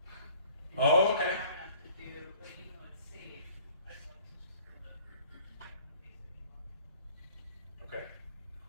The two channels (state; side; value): inverted; both; correlation -0.53